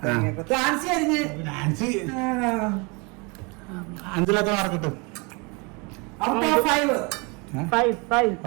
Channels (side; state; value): left; quieter; 29.9 dB